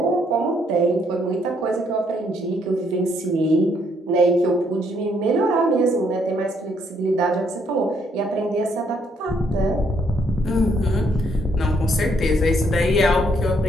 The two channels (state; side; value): normal; both; correlation 0.71